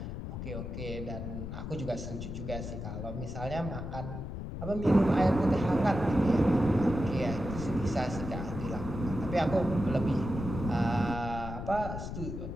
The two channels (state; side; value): noise; left; rumble, 6 dB below the sound